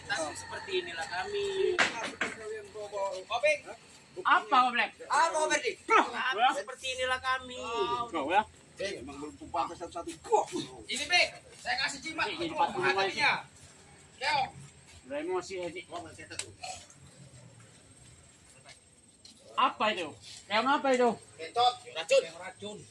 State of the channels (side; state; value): both; identical; correlation 1.00